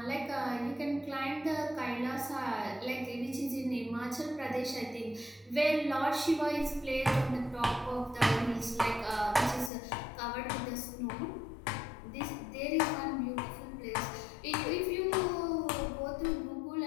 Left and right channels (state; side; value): drops out; right; at 9.7 s